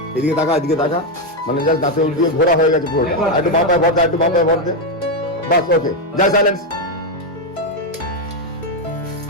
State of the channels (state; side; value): normal; both; correlation 0.04